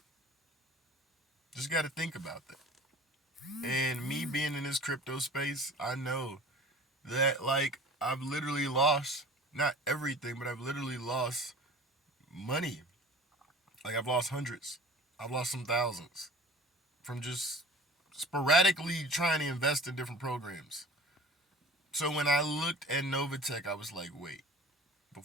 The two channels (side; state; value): both; normal; correlation 0.41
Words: Just got to think about that. And me being in this crypto space, I know that like I've literally lost not everything, but I've literally lost money. Like I've lost hundreds. I've lost some thousands from just sporadically trying to invest in different programs. So when I looked at Novatech, I was like, wait,